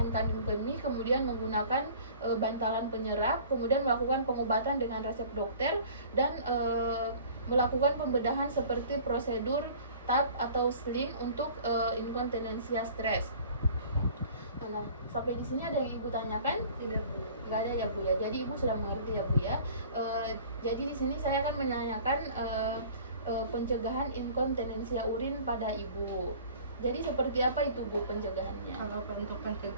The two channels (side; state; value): both; inverted; correlation -0.47